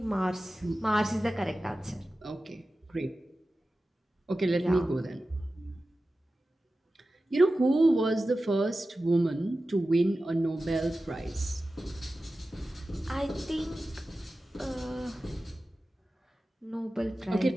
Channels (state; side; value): normal; both; correlation 0.94